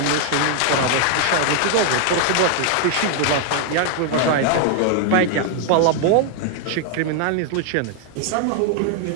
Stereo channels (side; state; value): both; different; correlation 0.00